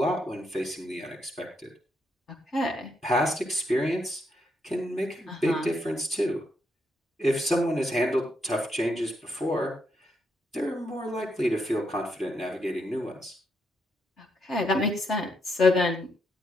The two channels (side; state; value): both; normal; correlation 0.79